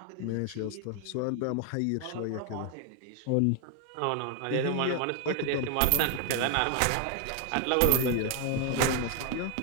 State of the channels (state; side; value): different; both; correlation 0.00